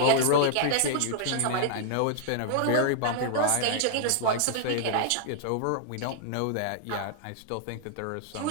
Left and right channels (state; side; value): different; both; correlation -0.01